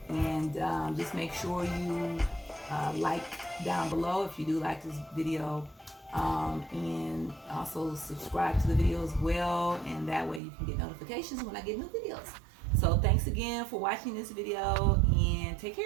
And just make sure you like down below if you do like this video. And also subscribe to the video as well. And that way you can get notifications when I get new videos. So thanks again for watching this video. And take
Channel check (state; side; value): drops out; left; at 10.4 s